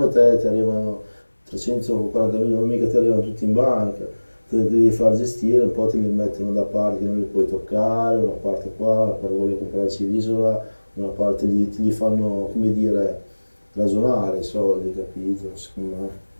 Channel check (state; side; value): inverted; both; correlation -1.00